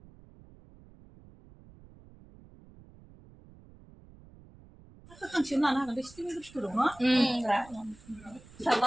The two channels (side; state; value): right; noise; rumble, 23 dB below the sound